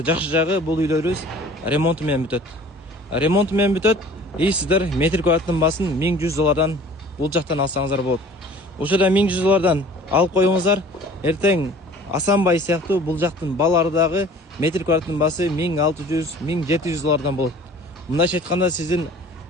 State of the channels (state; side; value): normal; both; correlation 0.48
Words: жакшы жагы бул үйлөрүбүз ремонту менен бүтөт. Ремонту менен бүтөт. Сиздер метр квадраттын баасын $1100 бул жактан алсаңыздар болот. Ошода $1100 алып коюңуздар. Эртең Асанбай сыяктуу бул жактын балары дагы метр квадраттын баасы $1600-1700 болот. Мындайча айтканда сиздин